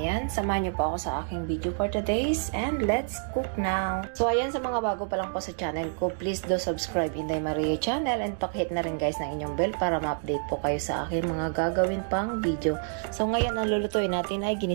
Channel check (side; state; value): left; silent; digital silence